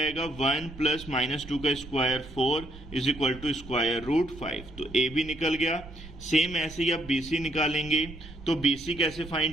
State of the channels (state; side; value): noise; right; rumble, 16 dB below the sound